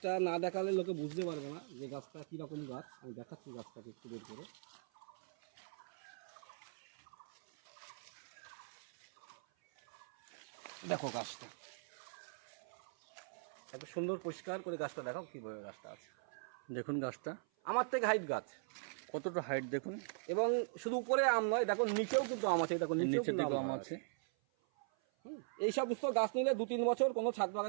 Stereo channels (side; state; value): left; silent; 51 dB below the other